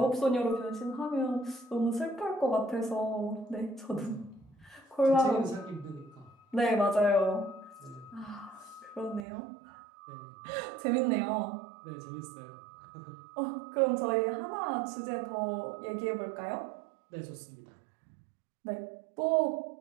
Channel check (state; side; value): drops out; left; at 9.2 s